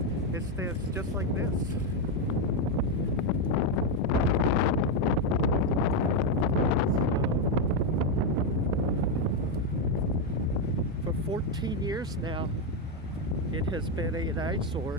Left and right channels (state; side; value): normal; both; correlation 0.04